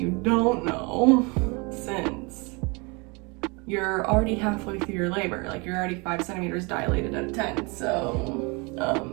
don't know, since you're already halfway through your labor, like you're already 5 centimeters dilated out of 10.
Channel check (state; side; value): quieter; left; 29.0 dB